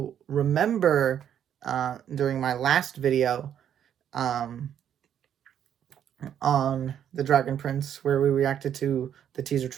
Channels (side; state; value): left; quieter; 9.6 dB